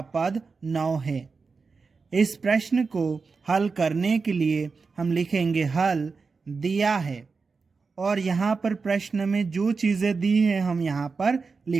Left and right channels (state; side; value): quieter; left; 4.6 dB